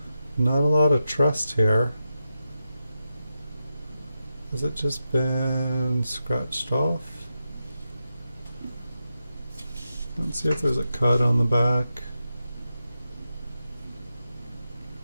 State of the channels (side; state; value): both; inverted; correlation -0.88